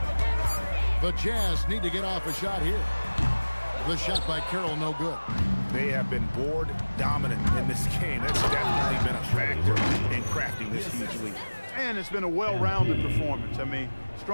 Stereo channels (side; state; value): both; inverted; correlation -1.00